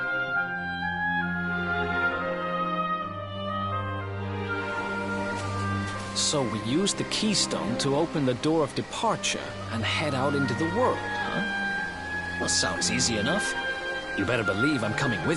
So we use the keystone to open the door of departure and head out into the world, huh? Well, sounds easy enough. You better believe I'm coming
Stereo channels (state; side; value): identical; both; correlation 1.00